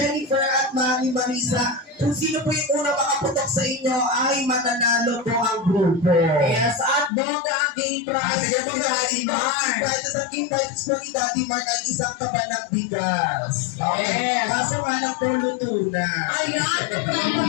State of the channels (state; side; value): drops out; right; at 7.1 s